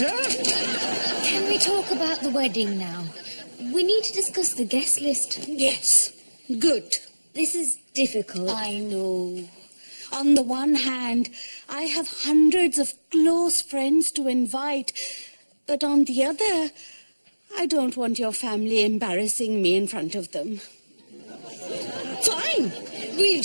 Can we talk about the wedding now? We need to discuss the guest list. Yes, good. This is difficult. I know. On the one hand, I have hundreds of close friends to invite, but on the other, I don't want your family embarrassing me in front of them. Fine. We'll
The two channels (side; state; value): both; inverted; correlation -1.00